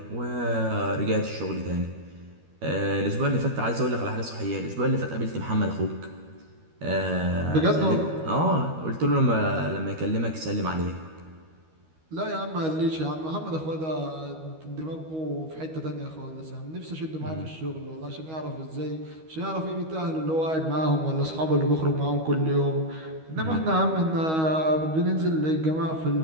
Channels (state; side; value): late; left; 13 ms